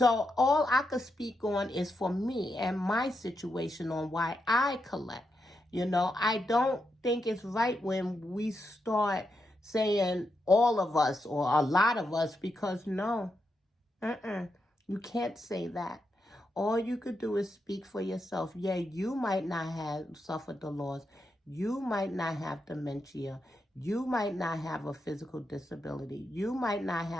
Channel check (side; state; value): both; normal; correlation 0.85